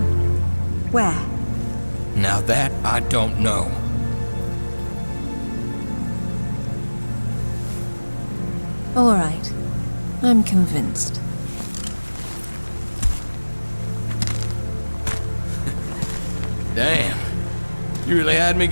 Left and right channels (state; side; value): inverted; both; correlation -1.00